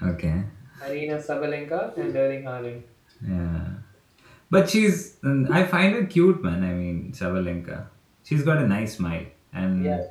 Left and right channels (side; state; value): both; identical; correlation 1.00